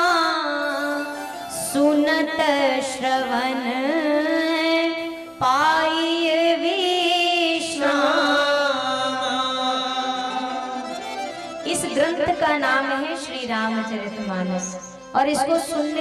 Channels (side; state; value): both; identical; correlation 1.00